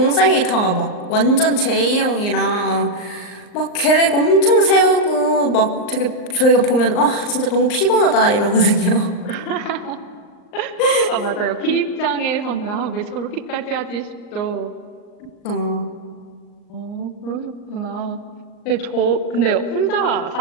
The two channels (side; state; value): right; late; 39 ms